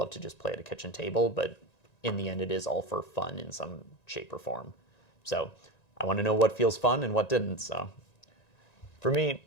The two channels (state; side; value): late; right; 1.9 ms